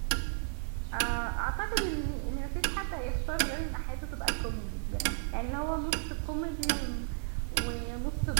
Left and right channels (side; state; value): left; silent; 55 dB below the other